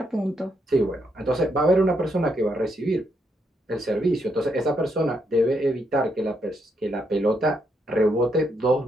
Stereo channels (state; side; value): normal; both; correlation 0.78